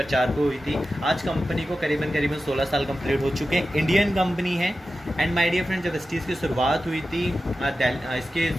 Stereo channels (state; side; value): normal; both; correlation 0.93